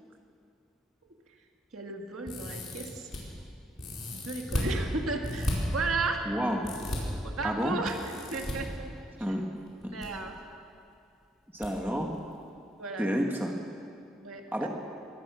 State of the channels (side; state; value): both; normal; correlation 0.74